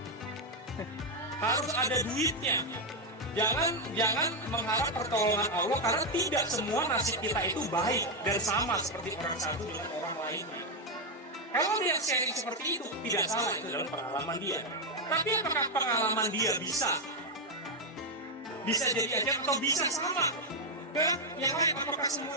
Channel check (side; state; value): both; normal; correlation 0.03